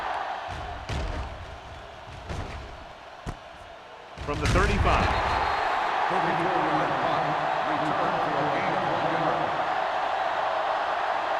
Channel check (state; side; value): identical; both; correlation 1.00